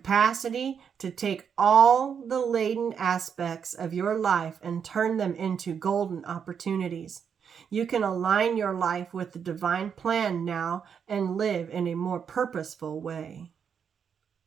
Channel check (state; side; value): quieter; left; 7.2 dB